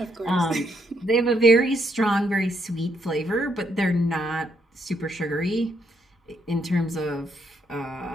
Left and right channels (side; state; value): both; normal; correlation 0.74